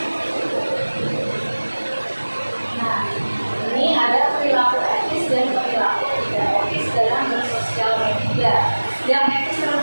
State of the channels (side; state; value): both; inverted; correlation -1.00